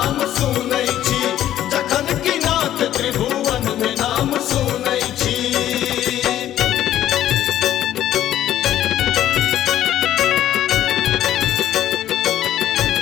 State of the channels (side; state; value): right; quieter; 12.2 dB